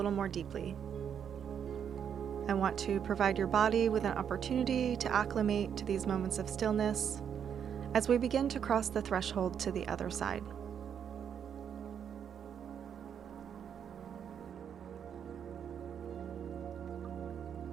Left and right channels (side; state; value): left; quieter; 8.2 dB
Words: more deeply. I want to provide your body with an opportunity to acclimate to these moments of stillness as we begin to cross the threshold to the other side.